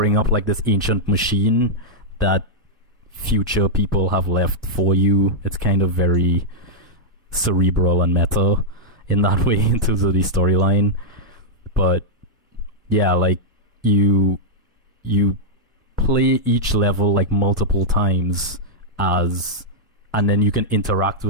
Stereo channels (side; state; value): both; normal; correlation -0.07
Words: up like this ancient machine that future people have left for you. It's kind of very cerebral and meta in that way in terms of the storyline, but yeah, like you play each level like multiple times and then you can interact